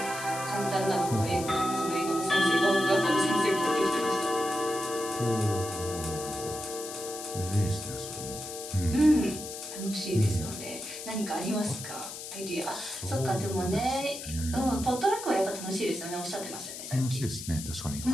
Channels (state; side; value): noise; left; hiss, 9 dB below the sound